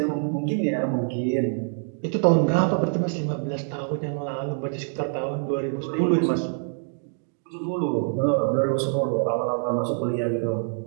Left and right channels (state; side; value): silent; left; 62 dB below the other